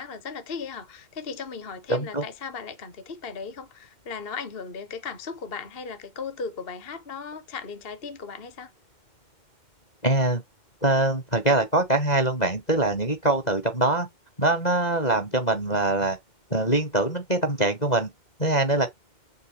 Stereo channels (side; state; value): right; late; 2.0 ms